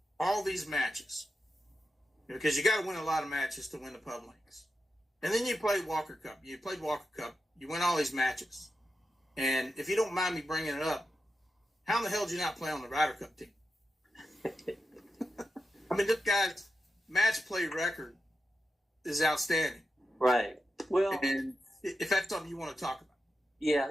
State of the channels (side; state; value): both; normal; correlation 0.90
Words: all these matches because you got to win a lot of matches to win the Pub Links. And then you played Walker Cup. You played Walker Cup. You win all these matches. And if you don't mind me bringing it up, how in the hell did you not play on the Ryder Cup team? I mean, this guy's match play record is outstanding. Right. Well, and if that's something you want to talk about.